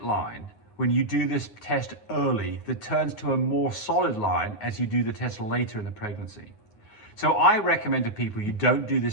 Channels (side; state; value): right; late; 9.5 ms